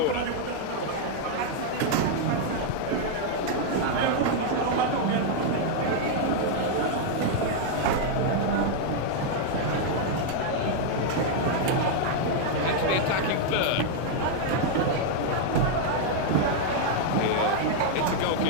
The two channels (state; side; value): different; both; correlation 0.00